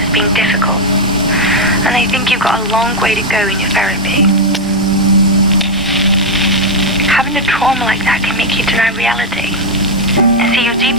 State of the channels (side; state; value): both; normal; correlation 0.02